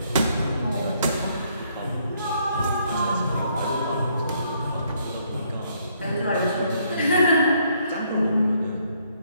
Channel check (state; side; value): inverted; both; correlation -0.69